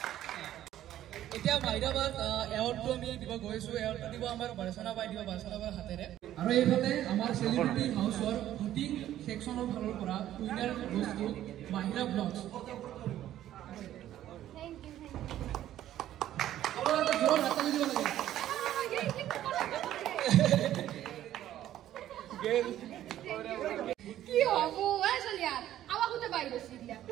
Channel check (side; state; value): left; quieter; 12.5 dB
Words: এতিয়া মাহিৰাবাদ এৱাৰ্ডটো আমি দিব গৈছোঁ, এৱাৰ্ডটো দিব আমাৰ বাৰচনা বাই দিব, বাৰচনা বাৰ হাতেৰে। আৰু এইফালে আমাৰ চেলিব্ৰিটি হাউচৰ ভোটিং ছেকশ্যনৰ ফালৰ পৰা উইনাৰ বস্তু মাহিৰা ব্লগছ। কি হব চলিয়া আমাক গোটেই বাই গৈছিল